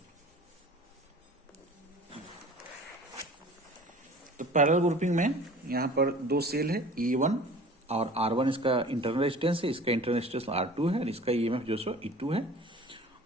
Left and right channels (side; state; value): both; normal; correlation 0.44